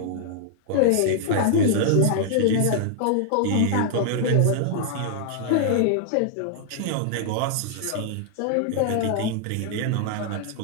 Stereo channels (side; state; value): both; different; correlation 0.00